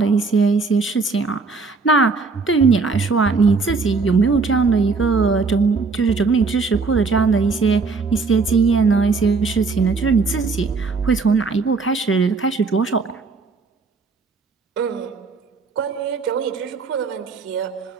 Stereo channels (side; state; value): left; quieter; 4.4 dB